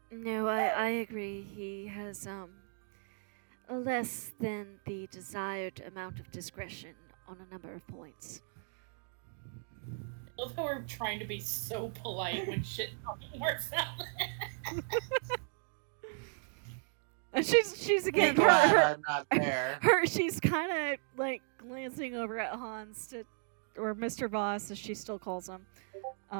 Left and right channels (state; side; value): silent; left; 54 dB below the other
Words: No, I agree. He has less than the desired amount of discretion on a number of points. love how we're trying to be so polite when shit fucking works out. And she's again Be glad her I'm not there. she's kind of like glancing over at Hans or Mr. Voss as she still calls him,